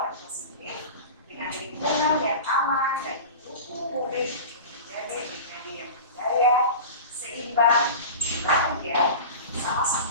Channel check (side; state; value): both; inverted; correlation -0.33